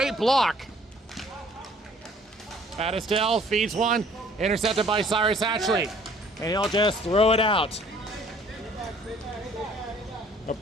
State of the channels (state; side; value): normal; both; correlation 0.57